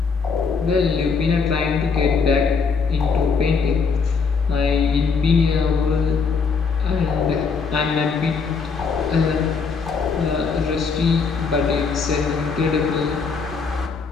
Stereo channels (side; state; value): right; quieter; 5.2 dB